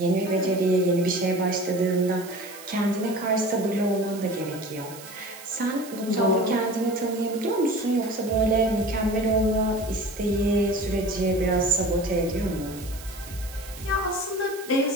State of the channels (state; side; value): noise; right; hiss, 16 dB below the sound